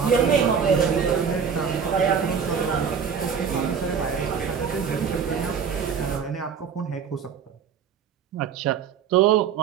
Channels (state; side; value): quieter; left; 6.9 dB